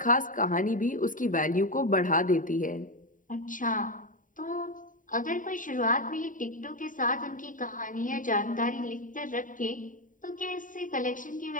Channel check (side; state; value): right; late; 0.38 ms